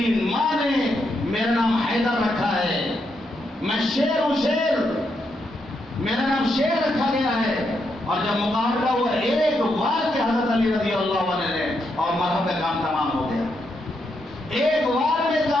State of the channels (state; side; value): normal; both; correlation 0.81